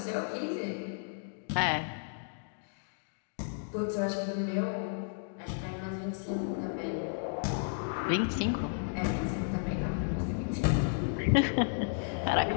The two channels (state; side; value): silent; right; digital silence